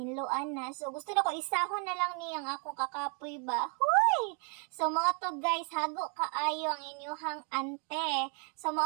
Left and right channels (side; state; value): left; quieter; 39.9 dB